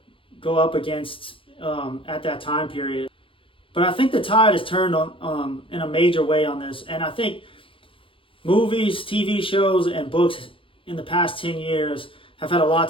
go up against at that time period. But I think the tide has turned on in a major way on this. And I think movies, TV shows, and books in the past 10 years have had a lot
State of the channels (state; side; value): late; right; 0.25 ms